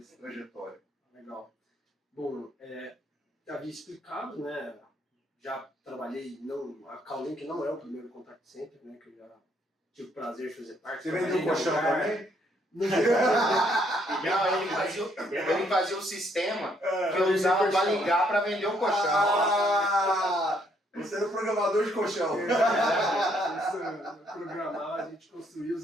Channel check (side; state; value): both; normal; correlation 0.69